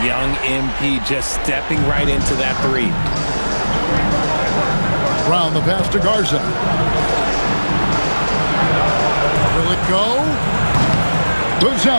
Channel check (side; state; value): both; inverted; correlation -1.00